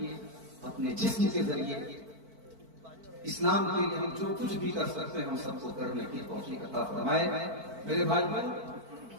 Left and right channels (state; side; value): late; left; 4.5 ms